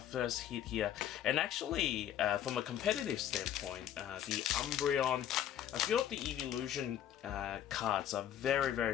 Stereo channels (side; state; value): right; quieter; 10.6 dB